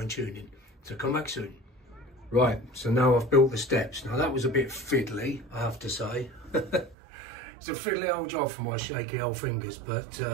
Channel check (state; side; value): drops out; left; at 7.0 s